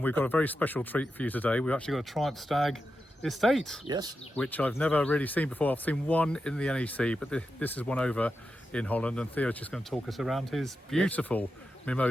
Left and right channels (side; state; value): both; normal; correlation 0.89